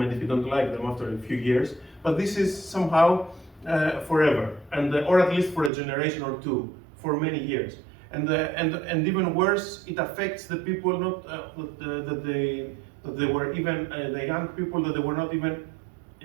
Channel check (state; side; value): drops out; left; at 5.7 s